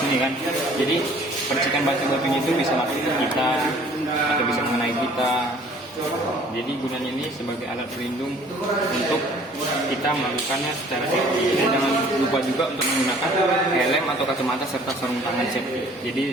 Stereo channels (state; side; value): normal; both; correlation 0.54